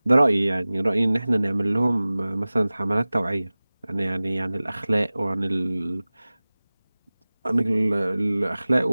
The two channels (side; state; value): both; inverted; correlation -0.98